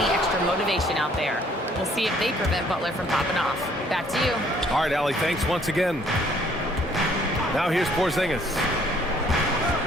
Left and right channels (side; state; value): both; normal; correlation 0.62